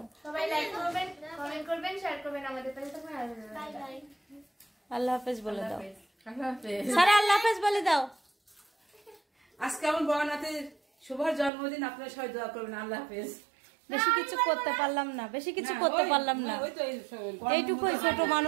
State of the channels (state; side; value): drops out; left; at 11.5 s